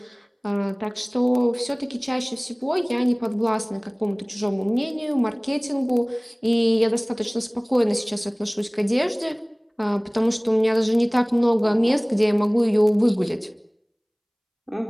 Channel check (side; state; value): both; identical; correlation 1.00